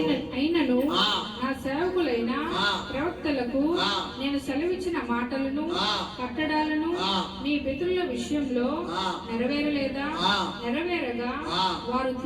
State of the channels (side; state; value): both; identical; correlation 1.00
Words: నా సేవకులైన ప్రవక్తలకు నేను సెలవిచ్చిన మాటలను కట్టడాలను మీ పితరుల విషయంలో నెరవేరలేదా? నెరవేరగా వారు